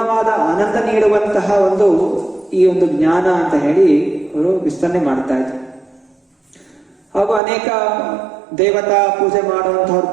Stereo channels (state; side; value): drops out; left; at 7.4 s